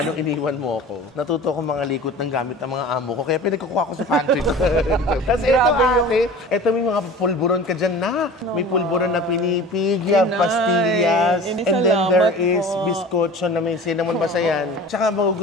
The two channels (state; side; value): normal; both; correlation 0.39